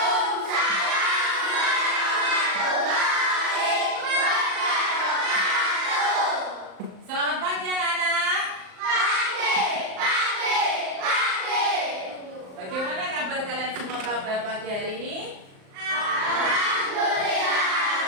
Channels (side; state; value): left; late; 38 ms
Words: warahmatullahi wabarakatuh. Selamat pagi anak-anak. Pagi. Bagaimana kabar kalian semua pada pagi hari ini? Alhamdulillah